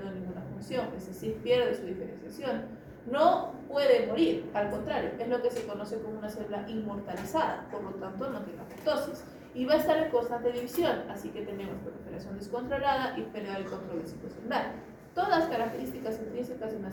ninguna función, es decir, pierde su diferenciación. No puede morir, al contrario, es lo que se conoce como una célula inmortalizada, por lo tanto no tiene apoptosis. Y va a estar en constante división, así que tenemos proliferación descontrolada y pérdida del control del ciclo celular. Todas características intrínsecas de una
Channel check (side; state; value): both; identical; correlation 1.00